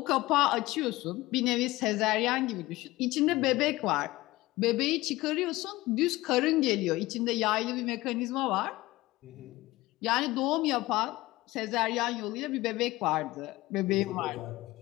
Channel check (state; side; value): quieter; right; 18.9 dB